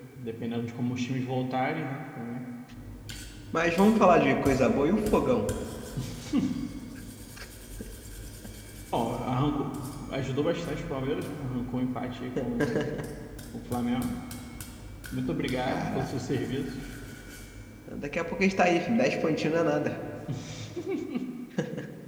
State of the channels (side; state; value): both; identical; correlation 1.00